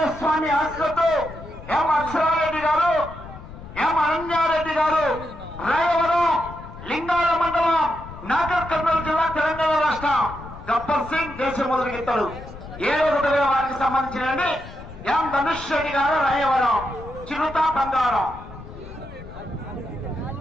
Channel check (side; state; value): left; noise; rumble, 15 dB below the sound